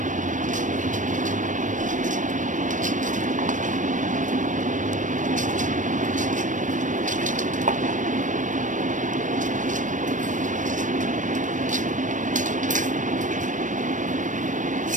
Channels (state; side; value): late; left; 0.37 ms